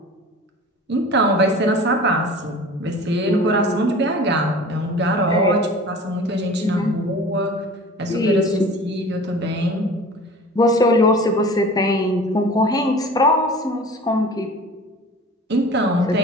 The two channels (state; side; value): normal; both; correlation 0.41